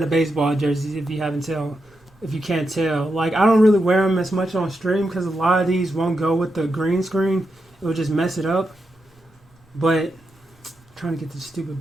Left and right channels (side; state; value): both; normal; correlation 0.86